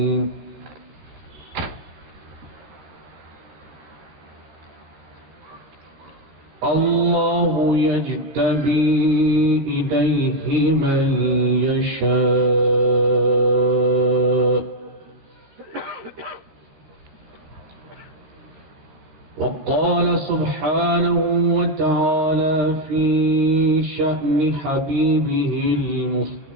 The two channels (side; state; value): left; late; 13 ms